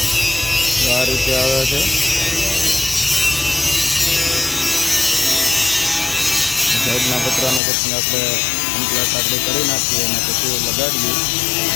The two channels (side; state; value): right; drops out; at 7.6 s